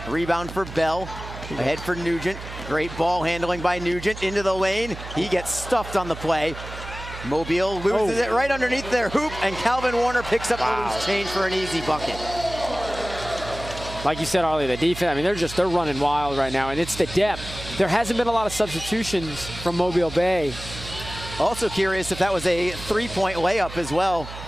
Rebound for Bell. Ahead for Nugent. Great ball handling by Nugent into the lane. He gets stuffed on the play. Mobile loses it right underneath their hoop, and Calvin Warner picks up the loose change for an easy bucket. Like you said, Arlie, the defense, I mean, they're running wild right now, and it's the depth. There hasn't been a lot of substitutions from Mobile Bay. Also curious if that was a 3-point layup as well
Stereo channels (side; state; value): right; noise; hum, 12 dB below the sound